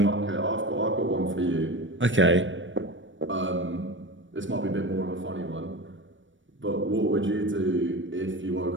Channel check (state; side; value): late; left; 0.56 ms